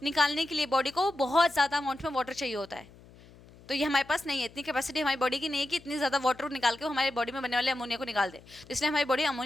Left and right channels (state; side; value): noise; left; hum, 23 dB below the sound